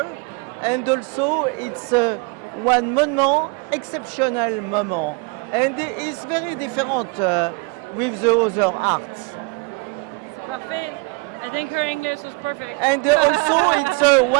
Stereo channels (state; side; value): quieter; left; 28.5 dB